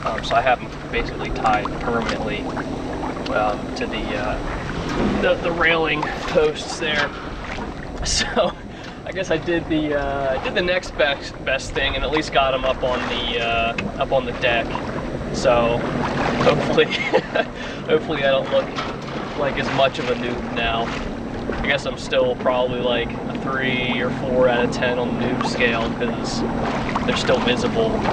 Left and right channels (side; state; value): both; identical; correlation 1.00